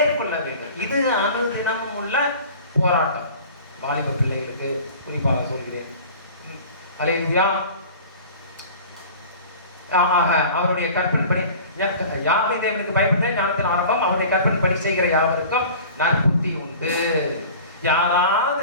வேண்டும். இது அனுதினமும் உள்ள போராட்டம். வாலிப பிள்ளைகளுக்கு குறிப்பாக சொல்கிறேன். அல்லேலூயா. அவருடைய கற்பனைப்படி யாவை தேவனுக்கு பயப்பட்டு ஞானத்தின் ஆரம்பம், அவருடைய கற்பனைப்படி செய்கிற யாவருக்கும் நற்புத்தி உண்டு.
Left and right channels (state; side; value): inverted; both; correlation -0.42